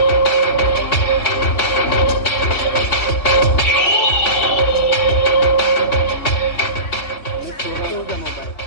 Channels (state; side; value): late; right; 3.6 ms